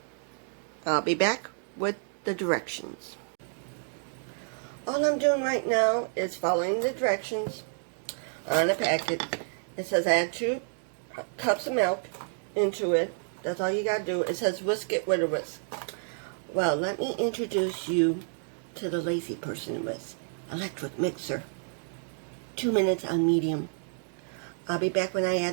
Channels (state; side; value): silent; left; digital silence